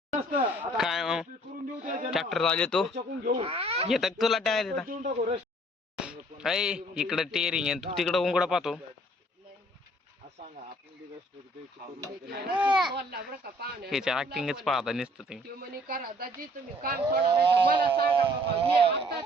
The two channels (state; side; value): normal; both; correlation 0.58